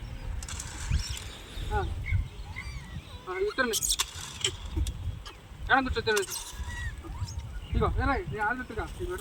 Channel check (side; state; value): both; identical; correlation 1.00